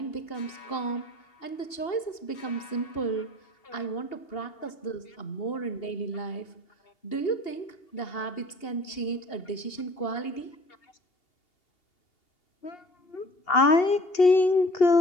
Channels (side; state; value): right; late; 2.8 ms